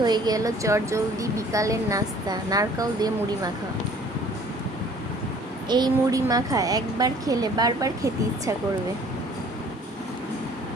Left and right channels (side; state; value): both; normal; correlation 0.54